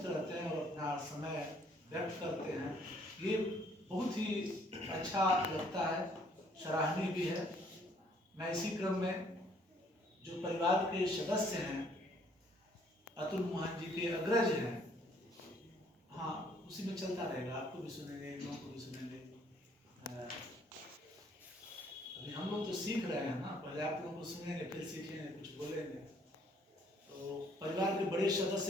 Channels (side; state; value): both; normal; correlation 0.63